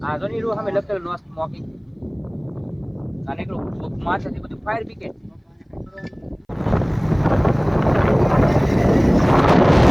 આજો ની હમે લખેલ નો સ્મોકિંગ અને એકલું માથેથી બધું ફાયર બ્રિગેડ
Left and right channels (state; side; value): identical; both; correlation 1.00